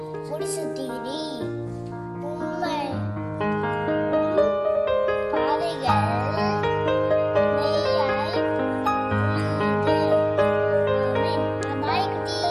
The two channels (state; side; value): identical; both; correlation 1.00